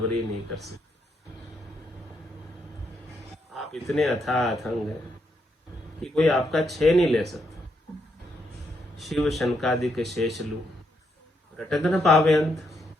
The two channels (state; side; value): normal; both; correlation 0.77